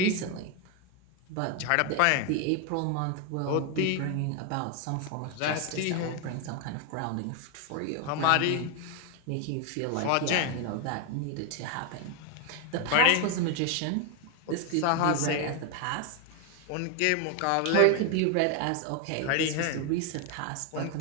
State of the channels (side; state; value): both; different; correlation 0.01